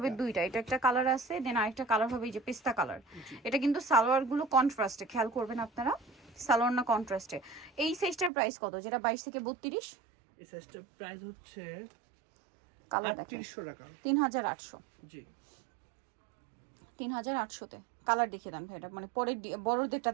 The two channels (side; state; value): left; drops out; at 8.3 s